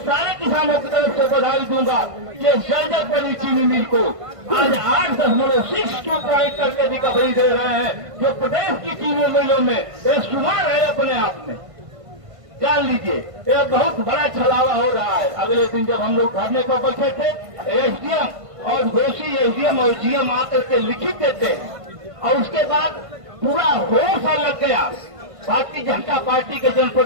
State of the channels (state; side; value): late; left; 1.5 ms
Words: सारे किसानों की तरफ से बधाई दूंगा कि जर्जर पड़ी चीनी मिल को आज 8.62 पॉइंट करके रिकवरी दे रहे हैं, जो प्रदेश की चीनी मिलों में एक शुमार है अपने आप में। जान लीजिए यह बहुत बड़ा छलावा हो रहा है। अगले दिन जब हम लोग धरने को बैठे थे एसडीएम और दोषी एसडीएम और जीएम आकर के लिखित देते हैं और उसके बाद पूरा होश लग गया भारतीय जनता पार्टी के